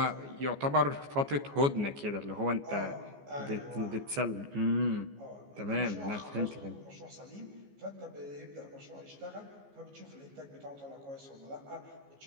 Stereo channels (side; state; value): left; late; 14 ms